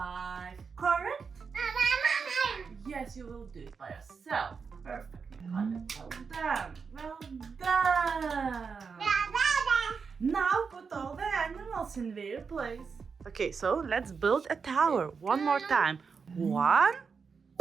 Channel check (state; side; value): quieter; left; 5.5 dB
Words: Correct? Yes, you will do it by yourself. Perfect, Nicole. Well done. Well done. Now put all the animals in their place. Okay, so let's build a tower one more time. 1,